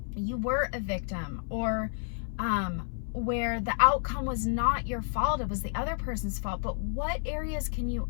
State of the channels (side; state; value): right; silent; 58 dB below the other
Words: you were a victim, or where the outcome was not your fault, it was the other person's fault. But what areas can you